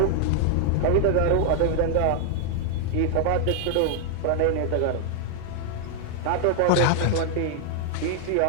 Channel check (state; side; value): different; both; correlation 0.00